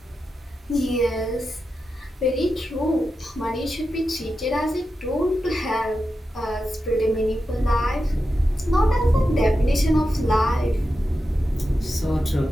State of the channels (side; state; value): both; normal; correlation 0.90